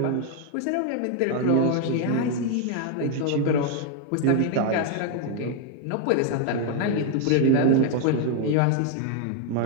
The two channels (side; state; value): both; different; correlation 0.00